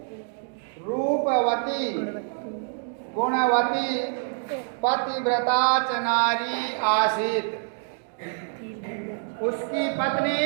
रूपवती गुणवती पतिव्रता च नारी आसीत्। उसकी पत्नी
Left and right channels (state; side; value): silent; left; 61 dB below the other